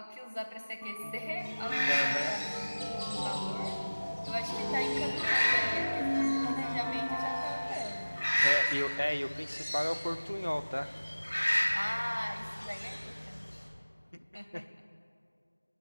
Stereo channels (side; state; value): both; inverted; correlation -1.00